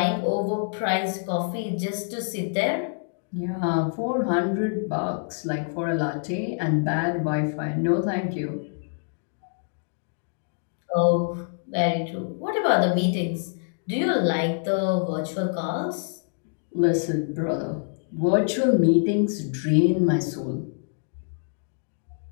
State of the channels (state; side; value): silent; right; digital silence